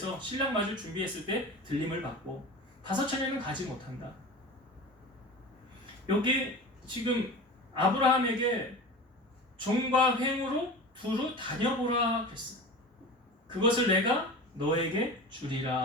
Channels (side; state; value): both; normal; correlation 0.33